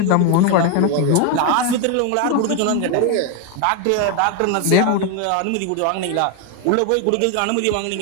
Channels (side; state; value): both; different; correlation 0.01